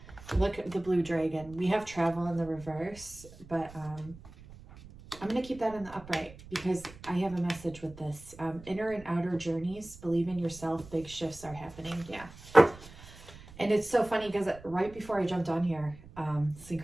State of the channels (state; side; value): noise; right; rumble, 19 dB below the sound